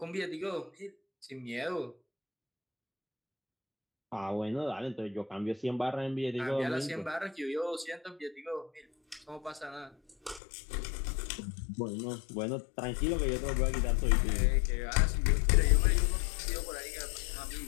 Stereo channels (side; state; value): right; drops out; at 10.4 s